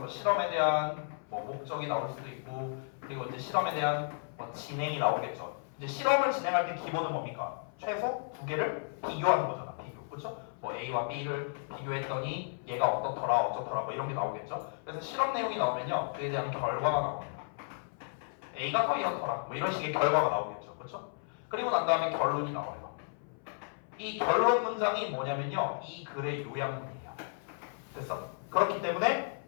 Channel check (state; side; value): silent; right; 55 dB below the other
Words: 실험에 대한 뭐 목적이 나올 수도 있고, 그리고 이제 실험에 대한 뭐 진행이 나오겠죠. 이제 실험을 진행할 때 기본은 뭡니까? 최소 두 개를 비교하는 거잖아. 비교, 그렇죠? 뭐 A와 B를 비교했더니 얘가 어떻더라, 어쩌더라, 뭐 이런 게 나오겠죠. 그래서 실험 내용이 나오면요, 그에 대한 결과가 나옵니다. A가 더 이렇더라, 뭐 이런 식의 결과가 나오겠죠, 그렇죠? 그리고 난 다음에 결론이 나와요. 이 결론 문장이 뭐냐면요, 이 글의 요약문이에요. 됐어? 그렇기 때문에